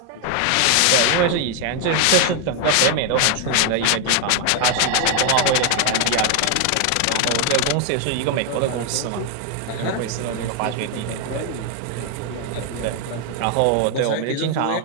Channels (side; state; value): both; different; correlation 0.01